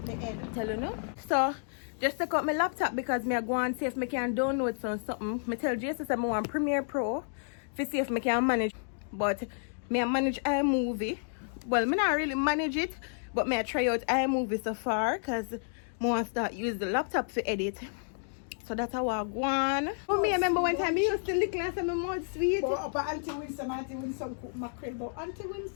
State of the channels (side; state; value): right; silent; digital silence